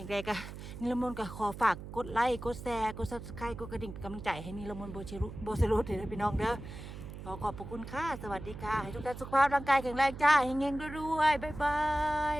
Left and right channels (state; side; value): noise; right; hum, 11 dB below the sound